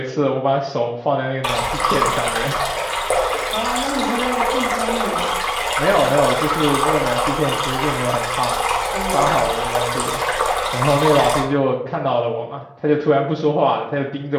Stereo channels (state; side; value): identical; both; correlation 1.00